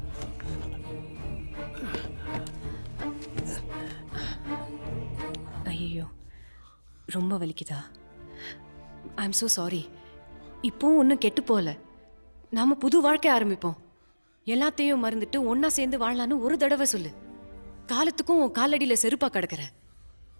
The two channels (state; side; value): inverted; both; correlation -1.00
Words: ஐயோ, ரொம்ப வலிக்குதா? I am so sorry. இப்போ ஒன்றும் கெட்டு போகல. நாம புது வாழ்க்கை ஆரம்பிப்போம். எல்லாத்தையும் மறந்துட்டு ஒன்னா சேர்ந்து வாழலான்னு ஒரு தடவை சொல்லு. காலத்துக்கும் உன் காலடியில செருப்பா கிடக்குற.